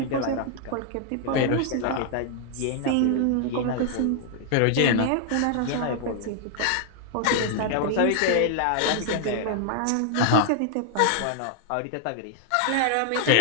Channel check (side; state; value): both; different; correlation 0.00